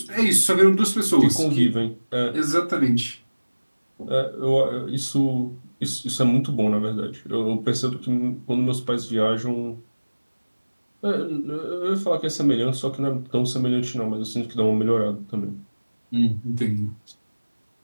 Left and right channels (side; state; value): both; inverted; correlation -1.00